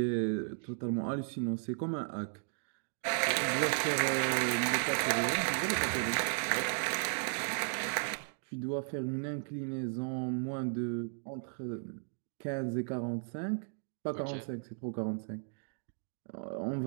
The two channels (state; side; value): silent; left; digital silence